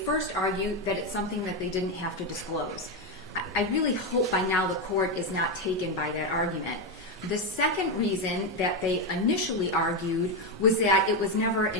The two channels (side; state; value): both; normal; correlation 0.08